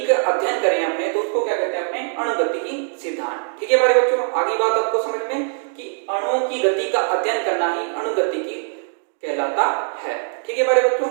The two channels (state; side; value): silent; left; digital silence